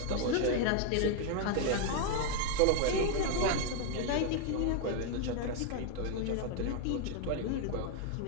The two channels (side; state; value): both; different; correlation 0.01